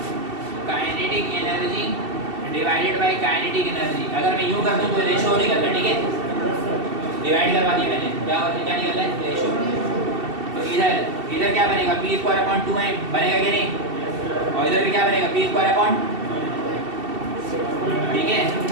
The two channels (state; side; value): late; left; 2.7 ms